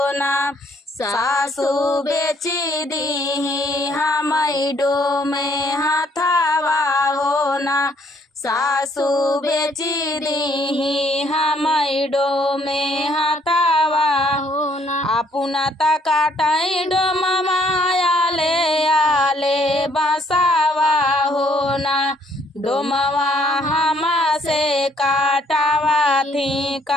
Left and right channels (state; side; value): normal; both; correlation 0.66